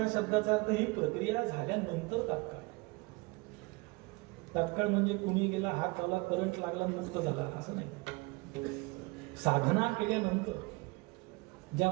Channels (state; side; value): quieter; left; 25.3 dB